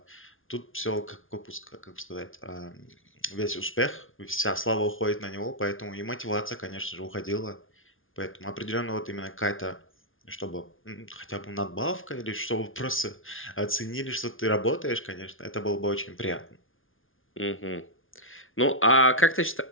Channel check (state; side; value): late; right; 0.58 ms